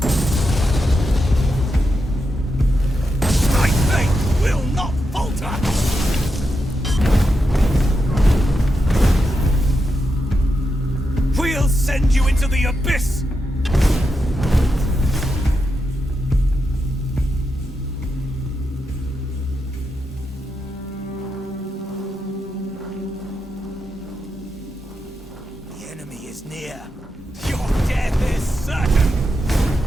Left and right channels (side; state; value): both; normal; correlation 0.86